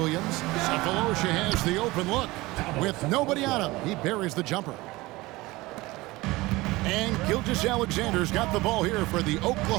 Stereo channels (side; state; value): left; quieter; 20.6 dB